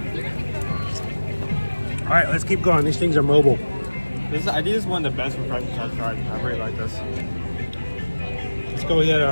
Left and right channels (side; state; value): both; inverted; correlation -1.00